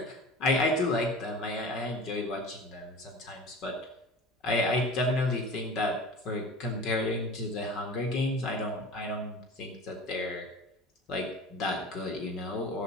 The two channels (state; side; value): normal; both; correlation 0.37